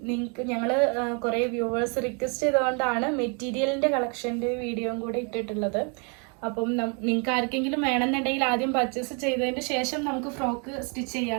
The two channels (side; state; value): left; quieter; 36.0 dB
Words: ഞങ്ങൾ കുറേ വ്യൂവേഴ്സ് റിക്വസ്റ്റ് ചെയ്തുകൊണ്ടാണ് മെറ്റീരിയലിൻ്റെ കളക്ഷൻ്റെ വീഡിയോയും കൂടെ ഇട്ടിട്ടുള്ളത്. അപ്പം നിങ്ങൾക്ക് ആർക്കെങ്കിലും വേണമെന്നുണ്ടെങ്കിൽ ആദ്യം പർച്ചേസ് ചെയ്തതിന് ശേഷം നമുക്ക് ഫ്രോക്ക് സ്റ്റിച്ച്